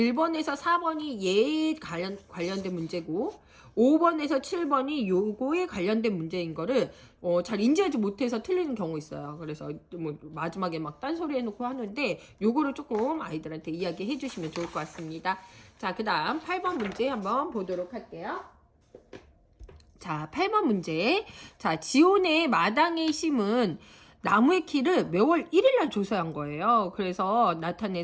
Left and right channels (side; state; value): both; identical; correlation 1.00